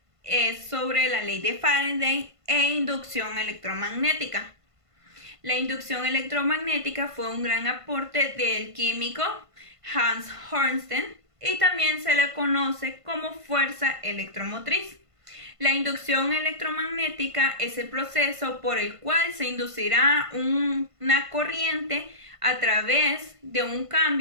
es sobre la ley de Faraday e inducción electromagnética. La inducción electromagnética fue un gran aporte del químico Hans Hornstein y también se le conoce como fuerza electromotriz. La inducción electromagnética es el proceso por el cual se inducirá una corriente a través de un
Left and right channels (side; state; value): left; late; 1.5 ms